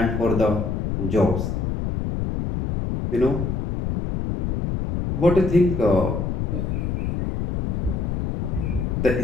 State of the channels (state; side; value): noise; left; rumble, 1 dB below the sound